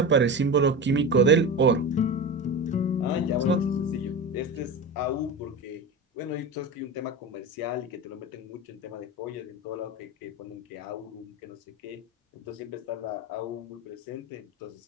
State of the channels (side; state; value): both; normal; correlation 0.25